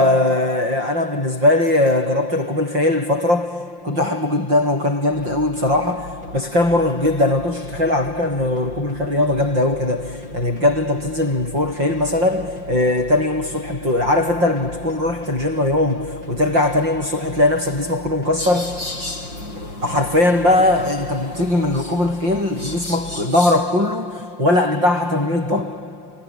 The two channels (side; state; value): left; late; 5.7 ms